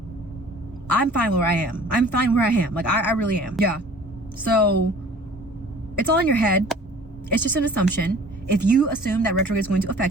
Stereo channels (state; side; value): normal; both; correlation 0.48